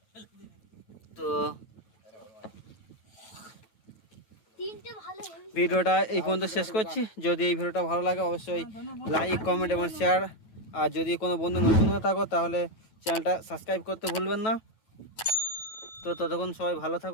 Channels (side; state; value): right; late; 9.2 ms